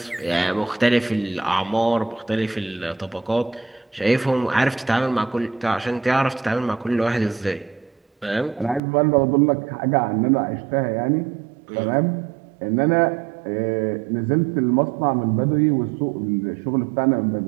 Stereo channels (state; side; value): drops out; left; at 8.8 s